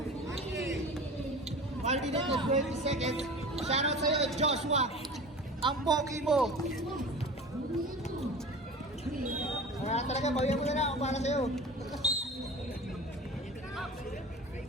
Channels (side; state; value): both; normal; correlation 0.37